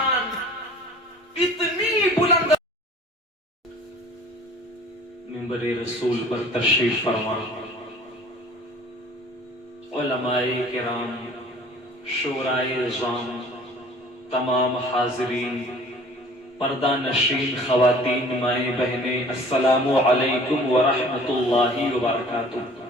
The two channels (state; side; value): normal; both; correlation 0.48